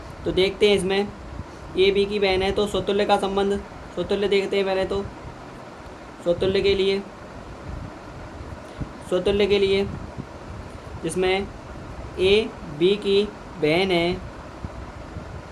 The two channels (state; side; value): identical; both; correlation 1.00